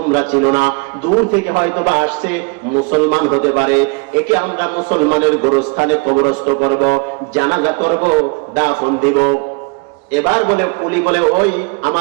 চিনো না, দূর থেকে হয়তো বা আসছে, মুসলমান হতে পারে, একে আমরা মুসলমানের গোরস্থানে কবরস্থ করব, জানাজা করব, দাফন দিব। এবার বলে পুলি বলে ওই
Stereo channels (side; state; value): left; quieter; 32.2 dB